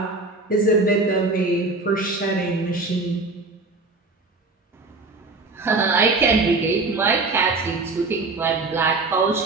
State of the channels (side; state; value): left; quieter; 3.4 dB